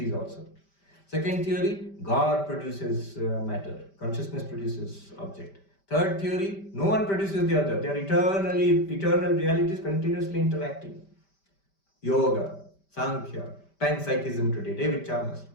also. Second theory, God produces matter, consciousness produces object. Third theory, no one produces the other. They are eternal realities continuously interacting. Yoga, Sankhya, panpsychism today, David Chalmers.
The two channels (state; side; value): late; right; 5.1 ms